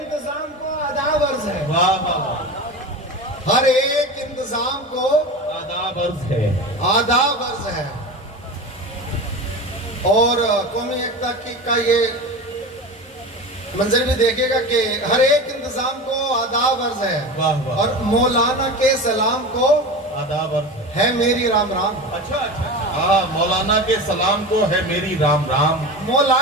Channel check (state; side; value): normal; both; correlation 0.28